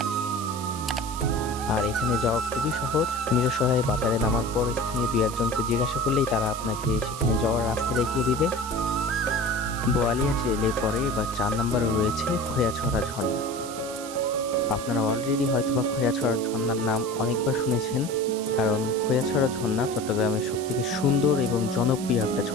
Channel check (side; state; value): right; noise; hiss, 13 dB below the sound